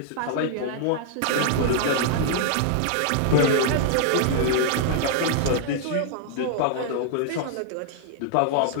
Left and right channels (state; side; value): different; both; correlation -0.01